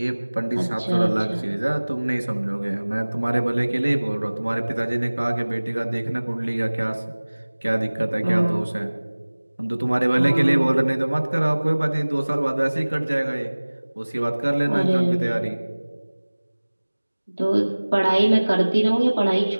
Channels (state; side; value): inverted; both; correlation -1.00